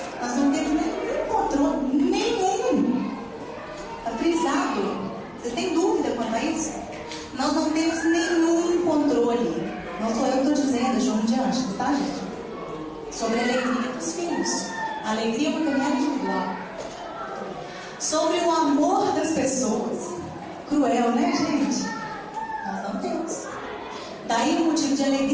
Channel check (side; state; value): both; identical; correlation 1.00